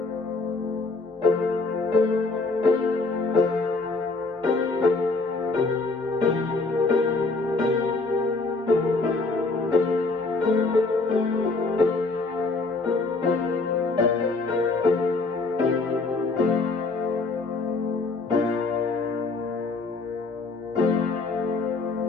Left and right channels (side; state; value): right; quieter; 3.7 dB